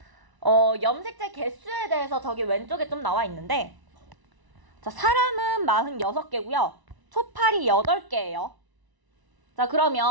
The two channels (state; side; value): late; left; 1.0 ms